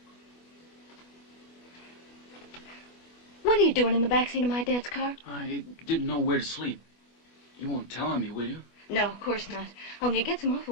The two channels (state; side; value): late; right; 25 ms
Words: What are you doing in the backseat of my dad's car? I didn't know where to sleep. You won't tell on me, will you? No, of course not. Only you get some